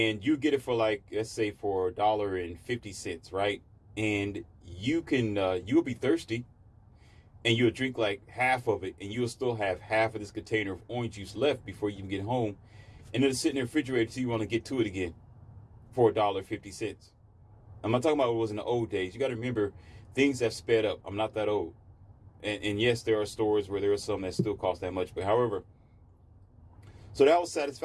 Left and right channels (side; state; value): both; identical; correlation 1.00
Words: you get it for like, let's say for $1.50, right? And you'll be thirsty and you'll drink like half of it and you'll still have half of this container of orange juice left before you can get home. And then it's sitting in the refrigerator till you want to get to it again for $1.50. I'm not talking about what it was in the old days. You got to remember, things have sped up. I'm not that old. And yes, there are stores where there are some that still cost that much. But however, so that was